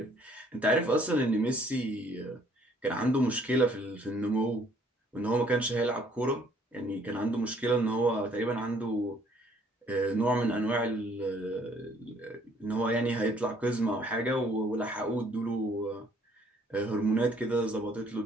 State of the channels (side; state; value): both; normal; correlation 0.62